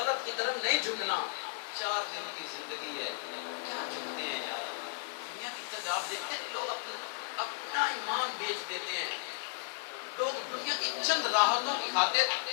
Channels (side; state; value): right; silent; 55 dB below the other